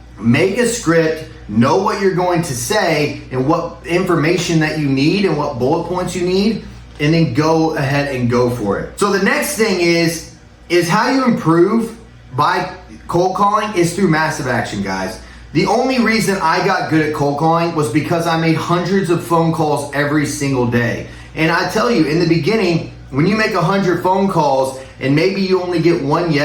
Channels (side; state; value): both; identical; correlation 1.00